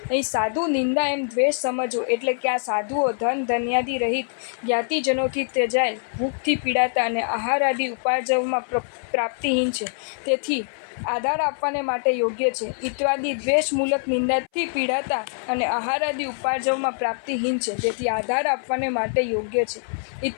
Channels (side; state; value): right; silent; 61 dB below the other